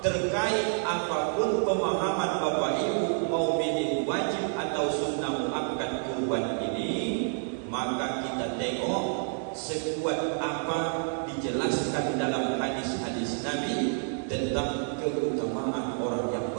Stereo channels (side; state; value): left; silent; 58 dB below the other